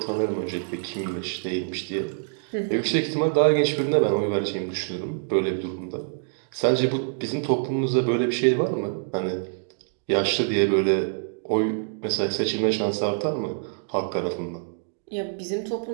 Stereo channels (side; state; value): left; silent; digital silence